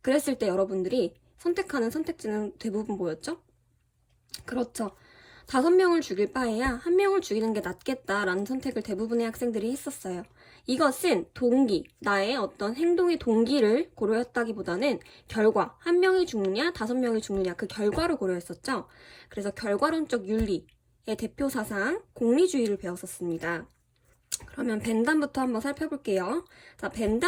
그랬을 때 여러분들이 선택하는 선택지는 대부분 뭐였죠? 그렇죠. 5명을 죽일 바에야 1명을 죽이는 게 낫겠다라는 선택을 대부분의 학생들이 했었어요. 이것은 동기, 나의 어떤 행동의 동기를 고려했다기보다는 결과, 1명이 죽느냐, 5명이 죽느냐 그 결과를 고려했었죠. 그래서 결과론적 윤리의 대표 사상, 공리주의를 배웠었습니다. 그러면 벤담부터 한번 살펴볼게요. 자,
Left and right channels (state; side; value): identical; both; correlation 1.00